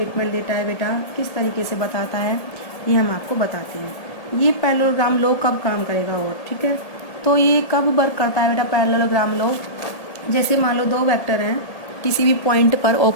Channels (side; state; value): right; late; 1.8 ms